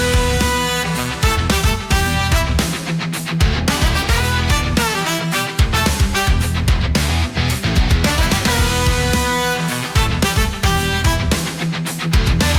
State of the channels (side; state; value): both; identical; correlation 1.00